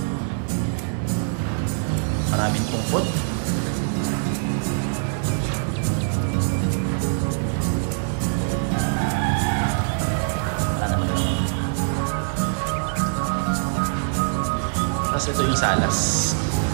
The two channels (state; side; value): silent; left; 61 dB below the other